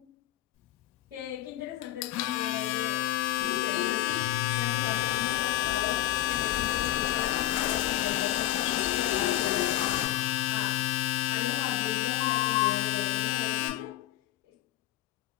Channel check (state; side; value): quieter; right; 14.4 dB